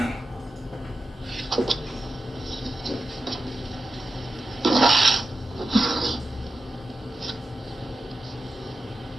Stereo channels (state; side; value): normal; both; correlation 0.92